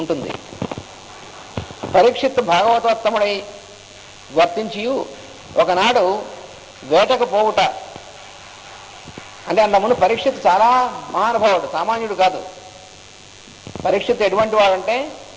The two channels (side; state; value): both; identical; correlation 1.00